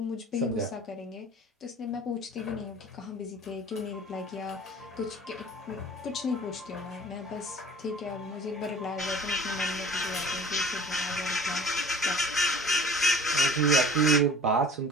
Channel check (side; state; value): both; normal; correlation 0.46